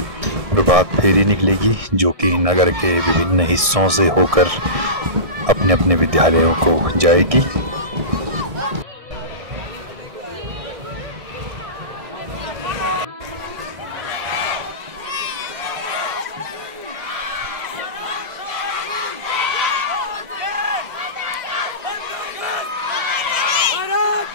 प्रभात फेरी निकलेगी जो कि नगर के विभिन्न हिस्सों से होकर अपने अपने विद्यालयों को जाएगी।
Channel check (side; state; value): left; late; 1.6 ms